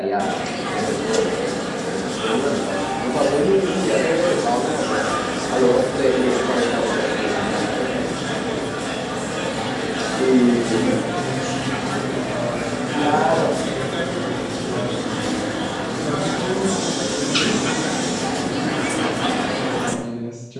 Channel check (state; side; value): identical; both; correlation 1.00